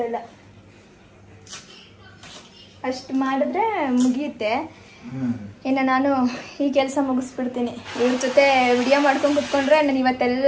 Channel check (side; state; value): both; identical; correlation 1.00